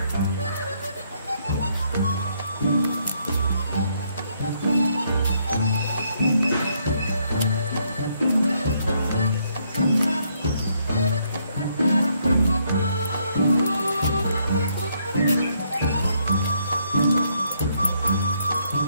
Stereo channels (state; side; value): inverted; both; correlation -0.72